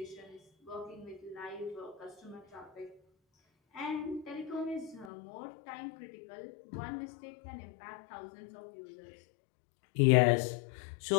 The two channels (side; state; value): right; drops out; at 5.1 s